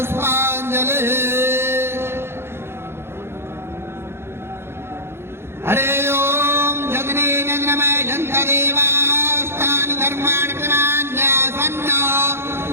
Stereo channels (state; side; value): late; left; 0.12 ms